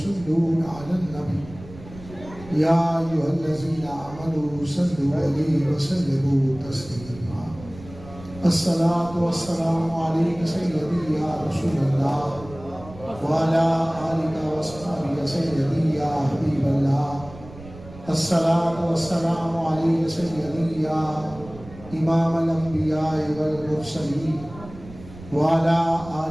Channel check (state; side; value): noise; right; rumble, 17 dB below the sound